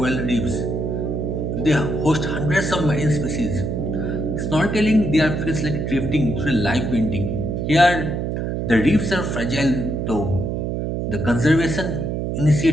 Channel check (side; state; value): right; noise; hum, 2 dB below the sound